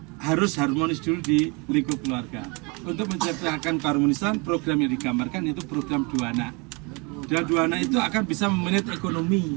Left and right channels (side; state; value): left; quieter; 28.1 dB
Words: harus harmonis dulu di lingkup keluarga. Untuk menciptakan keharmonisan, program yang digambarkan itu program 2 anak. Dan 2 anak itu akan bisa memanage ekonomi,